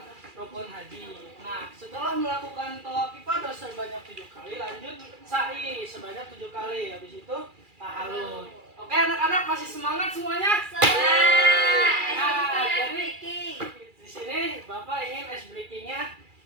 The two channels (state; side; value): late; left; 2.4 ms